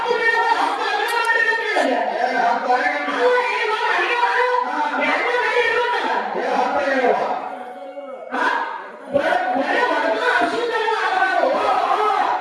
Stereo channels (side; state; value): both; identical; correlation 1.00